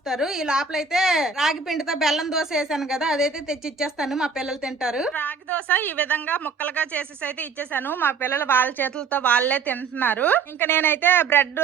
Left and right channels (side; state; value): left; quieter; 5.2 dB